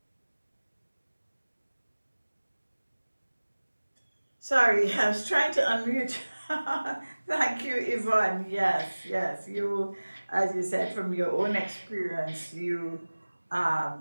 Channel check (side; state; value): both; inverted; correlation -1.00